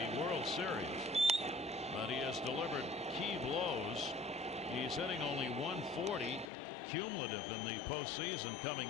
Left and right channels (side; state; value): right; drops out; at 6.5 s